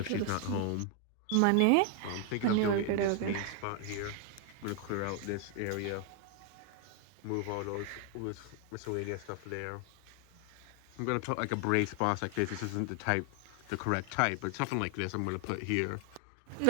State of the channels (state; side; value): different; both; correlation 0.00